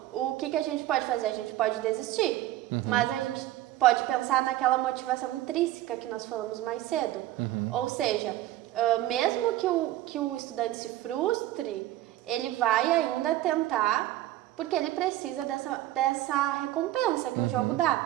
o que a gente pode fazer? A gente pode desistir, mas a gente pode pensar naquela motivação intrínseca que nós falamos mais cedo. Ou seja, mesmo que o estudante se frustre, ele vai ainda tentar, porque ele precisa dessa recompensa que o jogo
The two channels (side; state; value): left; quieter; 14.8 dB